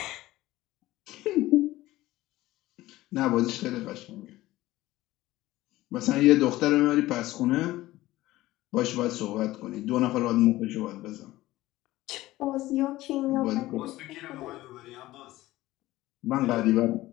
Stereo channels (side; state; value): right; quieter; 17.0 dB